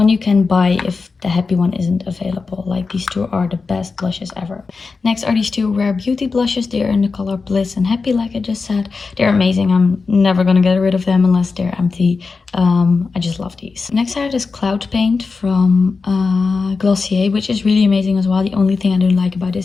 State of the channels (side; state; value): right; quieter; 4.5 dB